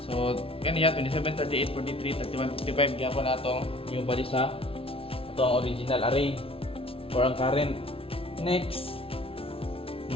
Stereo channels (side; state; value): right; late; 0.26 ms